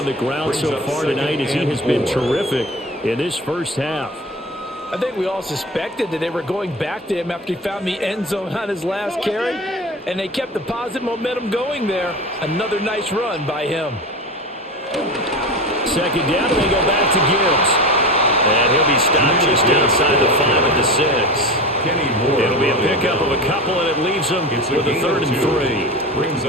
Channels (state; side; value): normal; both; correlation 0.29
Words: the ground so far tonight as he has been terrific in this first half. I think we all suspected that they were going back to him after he found the end zone on his last carry, and they kept the positive momentum going there. Another nice run by him. Second down, and they go back to Gibbs. And he'll be stopped just outside the 5 at the 6. It'll be a pickup of a couple, and it leaves them with a 3rd and 3.